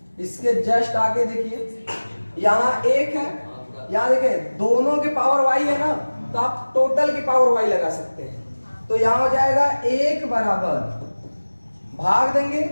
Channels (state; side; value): inverted; both; correlation -1.00